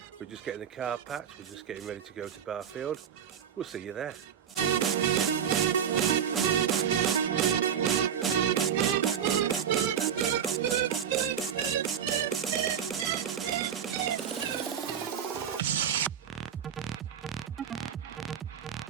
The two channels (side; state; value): left; quieter; 8.5 dB